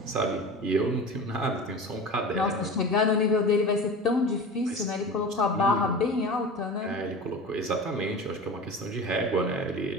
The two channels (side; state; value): both; normal; correlation 0.33